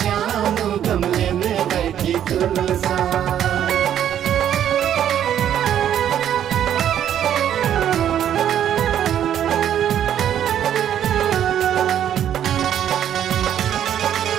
श्याम गमले में बैठी तुलसा।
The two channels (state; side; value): quieter; left; 10.2 dB